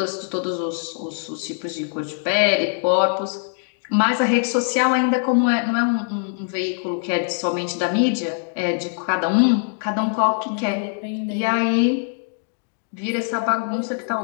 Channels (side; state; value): right; silent; digital silence